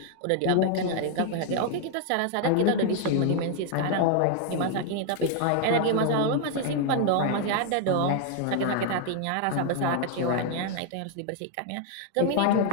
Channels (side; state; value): both; different; correlation 0.00